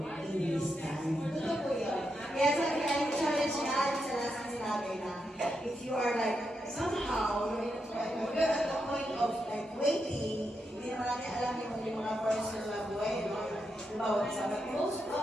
in His time. Totoo po yun. Kaya sa challenge niya, sa last sinabi na, if you are like, somehow, you're at the point of like waiting, hindi naman natin alam yung mga personal na buhay, bawat sa most,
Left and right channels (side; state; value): both; normal; correlation 0.84